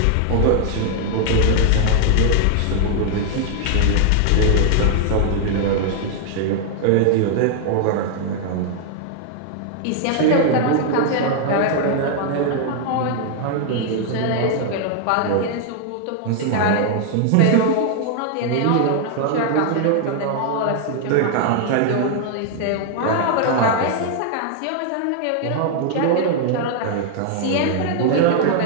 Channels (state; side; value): different; both; correlation 0.00